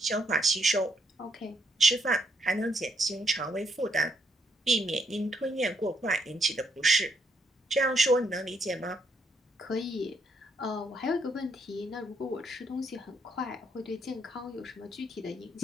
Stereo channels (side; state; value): both; normal; correlation 0.74